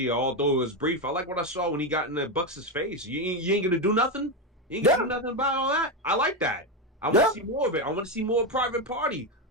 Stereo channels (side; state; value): both; normal; correlation 0.10